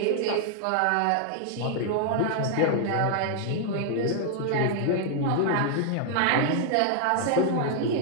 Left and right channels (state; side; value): different; both; correlation -0.01